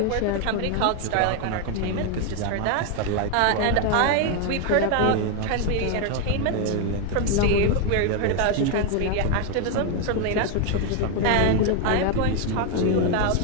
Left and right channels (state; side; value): different; both; correlation 0.01